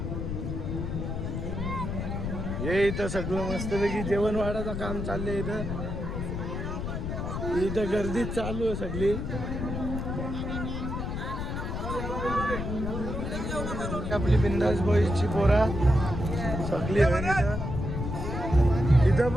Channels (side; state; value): left; noise; rumble, 3 dB below the sound